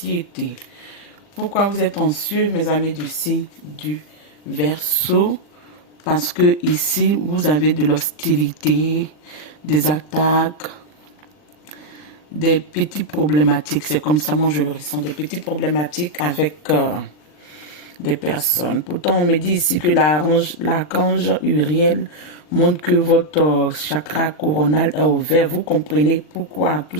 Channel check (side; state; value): right; late; 40 ms